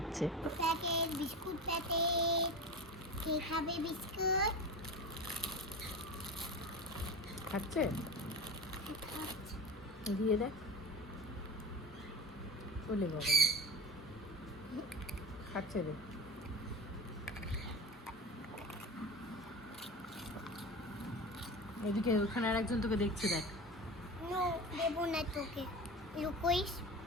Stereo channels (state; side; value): normal; both; correlation 0.29